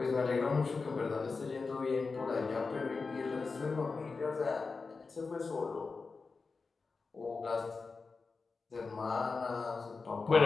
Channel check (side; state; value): right; quieter; 4.4 dB